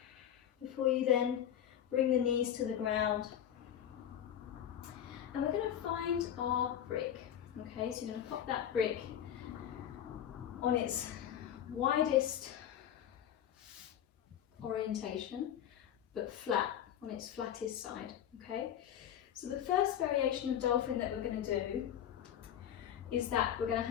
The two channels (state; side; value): quieter; right; 10.2 dB